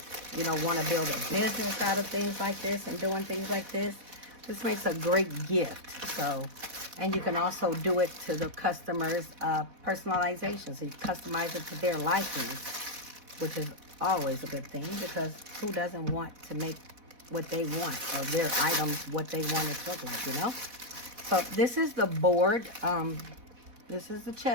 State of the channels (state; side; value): late; left; 4.1 ms